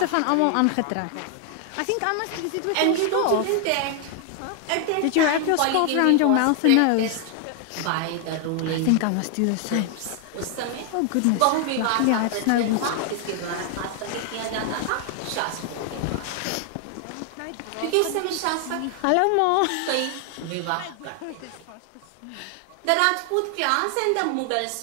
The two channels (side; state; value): both; different; correlation 0.00